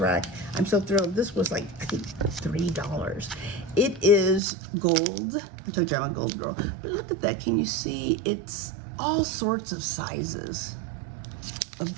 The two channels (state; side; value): drops out; left; at 4.4 s